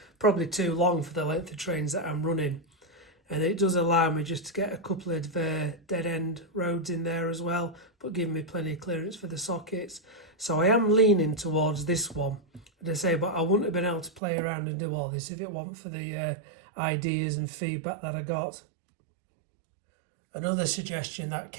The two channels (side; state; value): left; drops out; at 14.2 s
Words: probably too long for the length of trains that I'm running. And it does allow me just to get a couple of dead end roads in there as well, but giving me plenty of clearance for the sockets. So I am leaning towards this one, as I say, but I wouldn't have been able to play around and do all this if it weren't for the ideas and feedback that I got. Another suggestion that